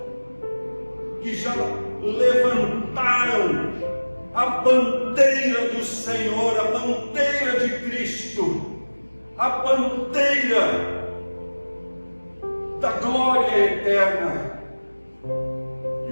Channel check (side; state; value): both; inverted; correlation -1.00